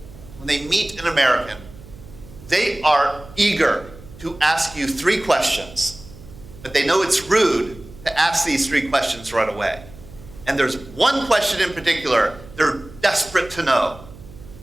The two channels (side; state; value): right; noise; hum, 19 dB below the sound